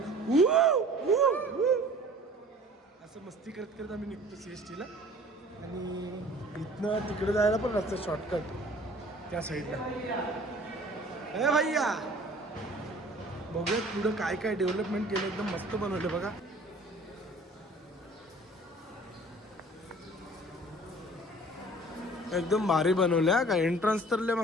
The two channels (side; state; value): both; normal; correlation 0.48